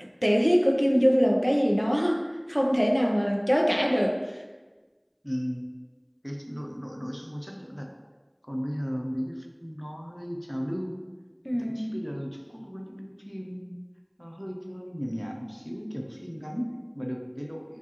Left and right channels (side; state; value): both; identical; correlation 1.00